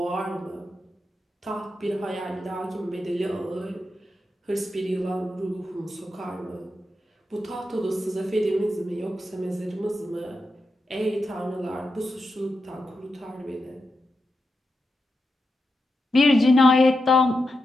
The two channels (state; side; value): normal; both; correlation 0.87